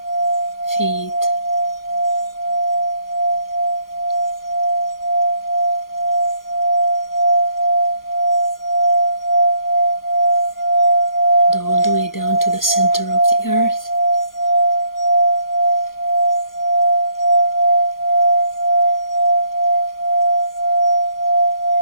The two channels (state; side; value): late; right; 0.91 ms